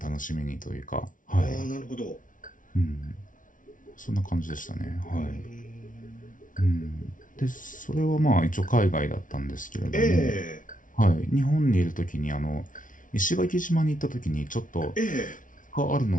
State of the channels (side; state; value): right; late; 0.38 ms